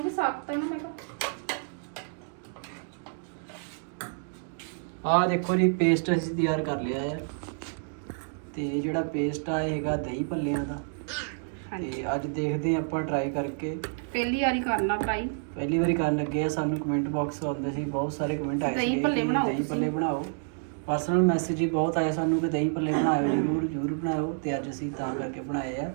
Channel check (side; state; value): left; silent; digital silence